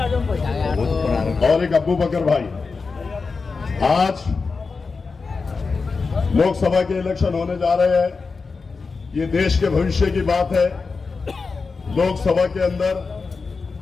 जाओ भाई। और एक अब्बू बकर भाई, आज लोकसभा के इलेक्शन होने जा रहे हैं। ये देश के भविष्य की बात है। लोकसभा के अंदर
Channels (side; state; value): right; quieter; 4.5 dB